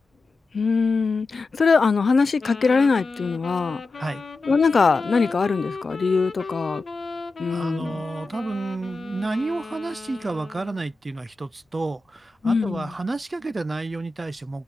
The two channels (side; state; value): right; quieter; 3.4 dB